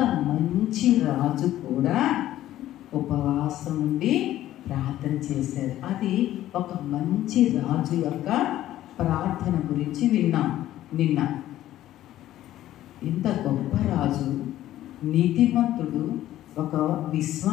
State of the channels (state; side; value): quieter; right; 13.6 dB